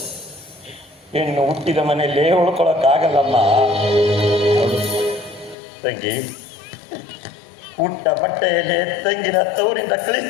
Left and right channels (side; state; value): right; drops out; at 5.6 s